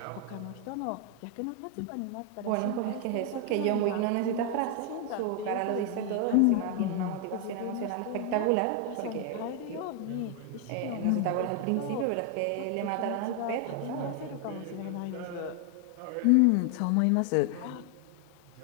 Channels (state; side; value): different; both; correlation 0.00